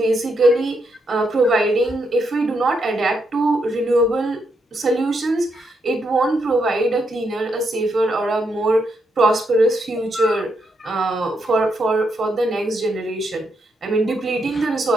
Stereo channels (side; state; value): both; normal; correlation 0.80